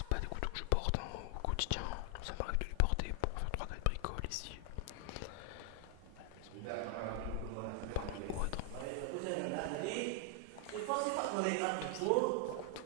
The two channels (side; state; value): both; different; correlation 0.00